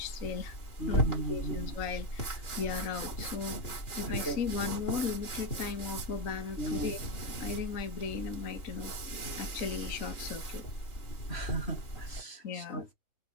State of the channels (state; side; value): late; right; 2.9 ms